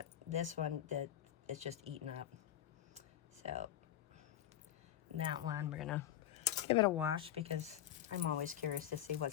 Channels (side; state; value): right; quieter; 11.7 dB